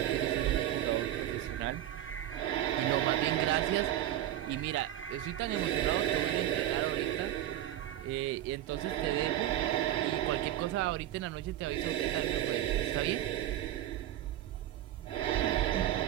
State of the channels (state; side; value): quieter; left; 12.6 dB